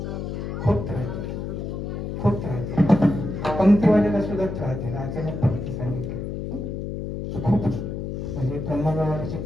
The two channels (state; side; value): noise; left; hum, 5 dB below the sound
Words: खूप त्रास दिला, खूप त्रास दिला. पंक्तीवाल्याला सुद्धा त्रास दिला. अचानक पंक्ती सांगितली खूप, म्हणजे ब्रह्मगावाची